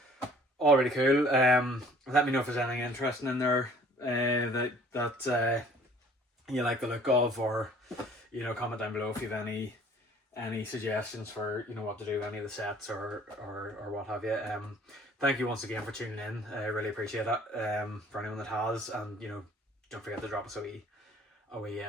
all really cool. Let me know if there's anything interesting in there that you like the look of, or comment down below if you have any suggestions for what to do with any of the sets or what have you. Thank you once again for tuning in. I really appreciate it. For anyone that has, and don't forget to drop us a wee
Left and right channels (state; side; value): normal; both; correlation 0.53